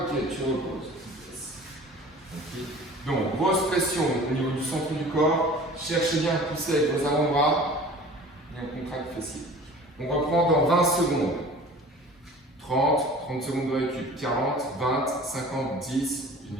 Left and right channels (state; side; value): normal; both; correlation 0.43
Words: tu reposes. Okay. Donc, grosse pression au niveau du centre du corps. Cherchez bien à pousser avec vos avant-bras. Et on contracte fessier. On reprend dans 20 secondes. 30 secondes de récup. 40, 20, 50, 10,